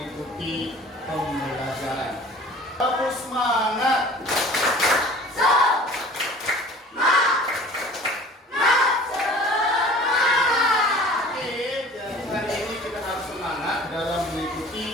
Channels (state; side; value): normal; both; correlation 0.45